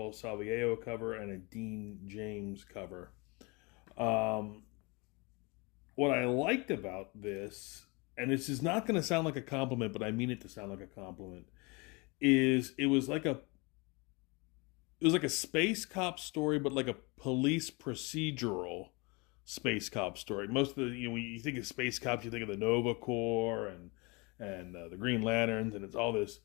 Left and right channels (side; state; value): right; quieter; 28.1 dB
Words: Salviejo cover and a Dean James cover. Um, what I liked about this, and this is not going to sound like a compliment, but I mean it to sound like a compliment, is it was like a space cop story, but like a police procedural space cop story. Most of the when you think of space cops, you think of the Nova Corps and the Green Lanterns, and it's all this